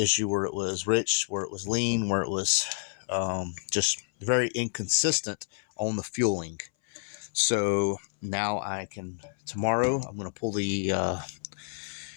issue where it was rich, where it was lean, where it was just very inconsistent on the fueling. So now tomorrow I'm going to pull the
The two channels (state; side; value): silent; right; 59 dB below the other